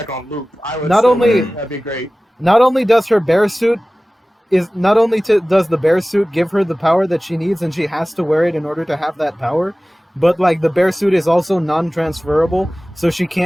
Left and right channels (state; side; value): normal; both; correlation 0.97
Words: on loop. I would Not still only- wear it. That'd be great. does her bear suit does the bear suit give her the power that she needs and she has to wear it in order to have that power, but like the bear suit is also non-transferable, so she